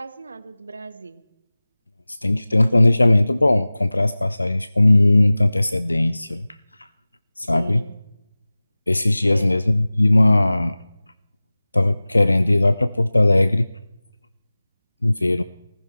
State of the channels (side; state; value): both; inverted; correlation -0.99